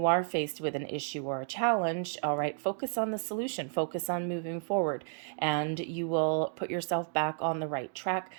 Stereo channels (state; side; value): silent; left; 56 dB below the other